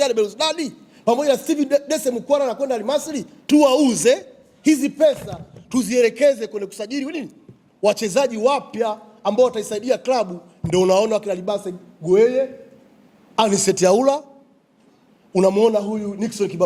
Belouizdad pamoja na Steve Dese Mukwala anakwenda Al Masry, tuwauze, hizi pesa tuzielekeze kwenye kusajili nini? Wachezaji wapya ambao wataisaidia klabu. Ndio unaona kila Libase Gueye, Anicet Yaula, unamuona huyu Nixon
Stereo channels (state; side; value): identical; both; correlation 1.00